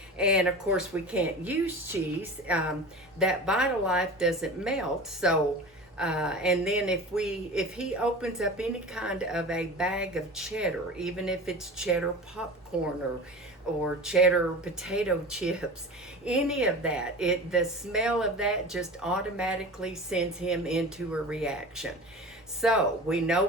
And of course, we can't use cheese. That Vitalife doesn't melt. So and then if he opens up any kind of a bag of cheddar, even if it's cheddar popcorn or cheddar potato chips, any of that, the smell of that just automatically sends him into a reaction. So we know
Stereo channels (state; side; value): normal; both; correlation 0.34